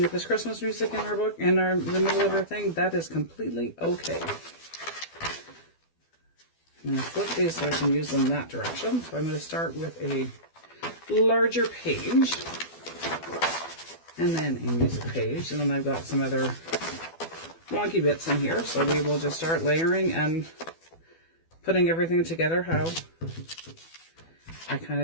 if there's Christmas music in our book, in the middle of our thing, that is completely okay. I'm going to flip these so I can use them that direction. So I'm going to start with a larger page, and then a music page, and then I've got some other wonky bits in here, so we will just start layering and putting everything together how I kind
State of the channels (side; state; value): right; late; 12 ms